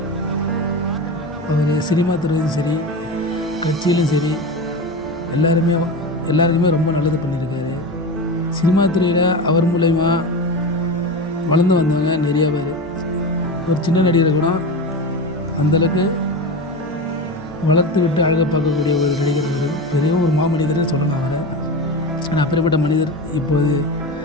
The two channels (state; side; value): normal; both; correlation 0.24